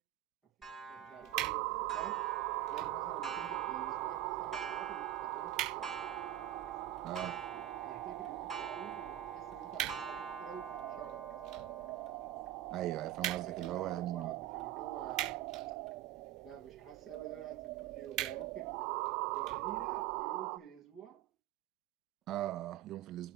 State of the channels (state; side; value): quieter; left; 13.0 dB